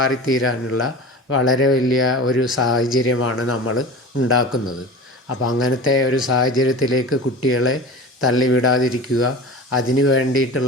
വളരെ വലിയ ഒരു സാഹചര്യമാണ് നമ്മൾ ഉണ്ടാക്കുന്നത്. അപ്പോൾ അങ്ങനത്തെ ഒരു സാഹചര്യത്തിലേക്ക് കുട്ടികളെ തള്ളിവിടാതിരിക്കുക, അതിന്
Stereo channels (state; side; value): normal; both; correlation 0.34